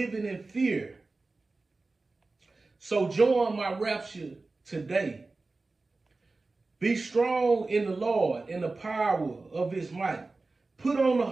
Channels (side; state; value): left; quieter; 3.5 dB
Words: in fear. So join my rapture today. Be strong in the Lord and the power of his might. Put on the